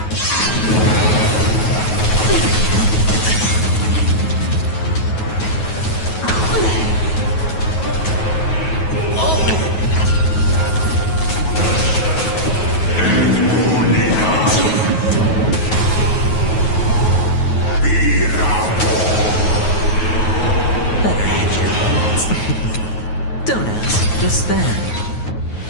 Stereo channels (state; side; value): late; right; 9.3 ms